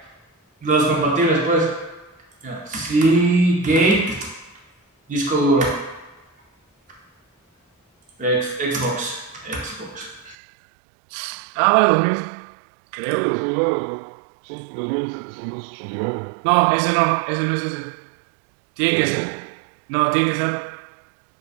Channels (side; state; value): left; drops out; at 10.4 s